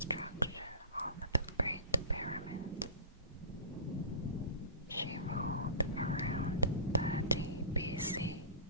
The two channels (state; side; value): inverted; both; correlation -0.33